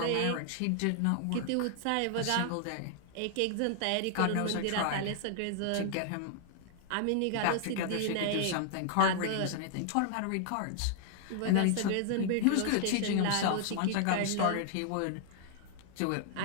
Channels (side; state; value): both; different; correlation 0.00